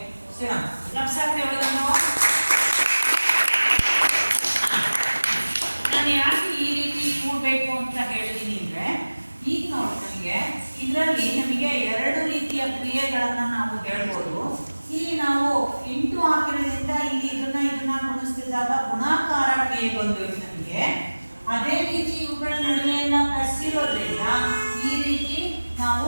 ನಾನು ಯಾಕೆ ಈ ರೀತಿ ಕೂಡಬೇಕು ಅಂತ ಹೇಳ್ತೀನಿ ಅಂದ್ರೆ ಈಗ ನೋಡಿ ನಮಗೆ ಇದರಲ್ಲಿ ನಮಗೆ 2 ರೀತಿಯ ಕ್ರಿಯೆಗಳನ್ನು ನಾವು ಹೇಳ್ಬೋದು. ಇಲ್ಲಿ ನಾವು ಇಂಟು ಹಾಕಿರೋದ್ರಿಂದ ಇಲ್ಲಿ ಇದನ್ನ ಗುಣಿಸ್ತಿದ್ದಾಗ ಗುಣಾಕಾರ ಕ್ರಿಯೆ ಬಂದೋಯ್ತು ನಮಗೆ. ಅದೇ ರೀತಿ ಇವುಗಳ ನಡುವೆ ಎಲ್ಲ ಪ್ಲಸ್ ಇರೋದ್ರಿಂದ ಈ ರೀತಿ ನಾವು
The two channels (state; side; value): inverted; both; correlation -1.00